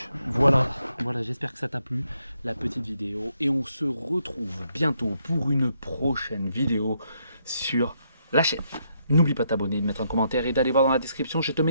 voilà, j'espère que ça t'a plu, la petite vidéo. Et on se retrouve bientôt pour une prochaine vidéo sur la chaîne. N'oublie pas de t'abonner, de mettre un commentaire et d'aller voir dans la description, je te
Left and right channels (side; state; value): both; inverted; correlation -0.76